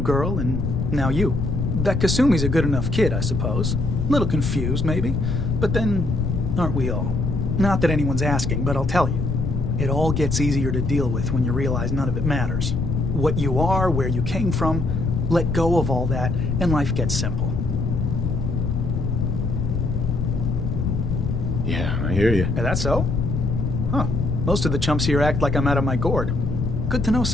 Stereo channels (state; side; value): noise; left; rumble, 3 dB below the sound